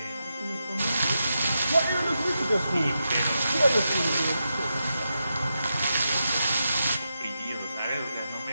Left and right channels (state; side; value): inverted; both; correlation -0.87